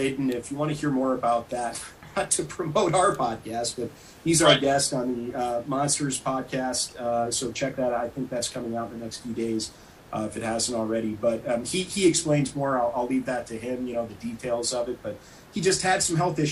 And if you want to hear more about that, not to promote our podcast, but he's our guest on the Monsters podcast. So check that out. I think that's coming out in the next few days. if it hasn't already. But he explains more. I'll leave that to him, the details of it. But he just had some health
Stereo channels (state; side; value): identical; both; correlation 1.00